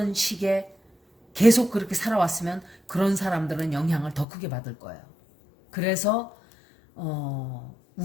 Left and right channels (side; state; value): right; drops out; at 4.2 s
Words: 식에 계속 그렇게 살아왔으면 그런 사람들은 영향을 더 크게 받을 거예요. 그래서